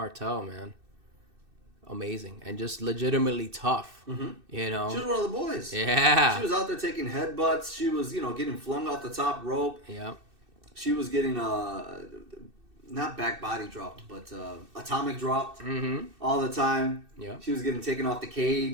man, amazing and just legitimately tough. Mm-hmm. You know, she was one of the boys. Yeah, she was out there taking headbutts. She was, getting flung off the top rope. Yeah, she was getting not back body dropped, but atomic dropped all the time. Yeah, she was getting taken off the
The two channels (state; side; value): late; left; 2.6 ms